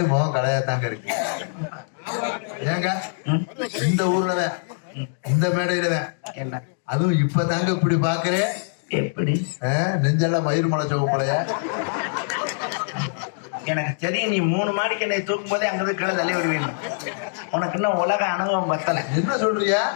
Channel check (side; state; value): right; silent; digital silence